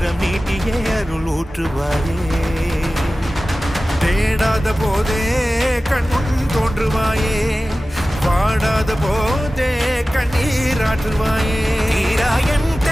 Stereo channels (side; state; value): both; normal; correlation 0.96